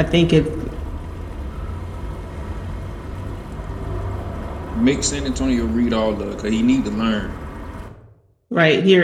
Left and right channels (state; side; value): identical; both; correlation 1.00